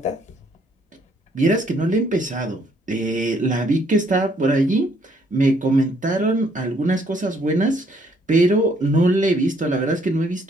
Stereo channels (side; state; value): both; normal; correlation 0.67